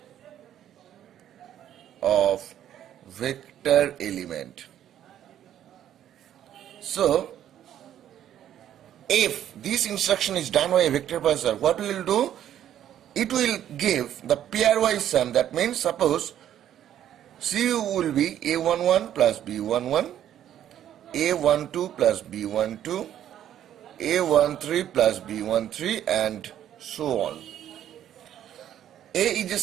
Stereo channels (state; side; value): quieter; left; 10.9 dB